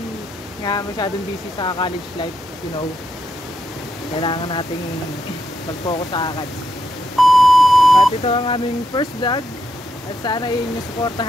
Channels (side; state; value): both; normal; correlation 0.81